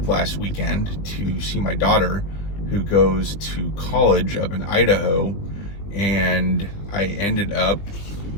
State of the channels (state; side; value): late; right; 20 ms